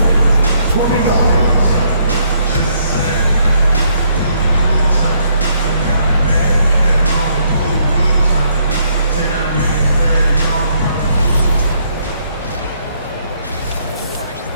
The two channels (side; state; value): both; inverted; correlation -0.71